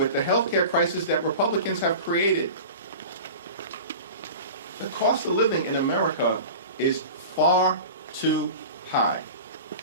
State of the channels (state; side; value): inverted; both; correlation -0.35